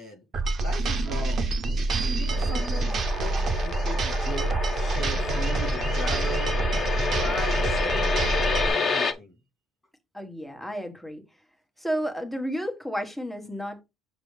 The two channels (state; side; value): normal; both; correlation 0.78